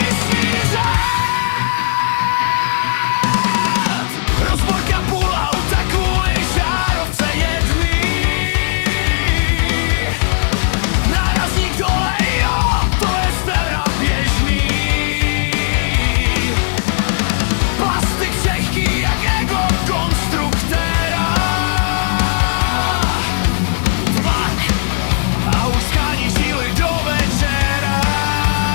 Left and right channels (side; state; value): right; silent; 66 dB below the other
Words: řád. Rozborka půl auta kvůli žárovce jedný. Nárazník dole, jo, to je teda běžný. Plastik křehký jak ego konstruktéra. Vlak a už schání žíly do večera.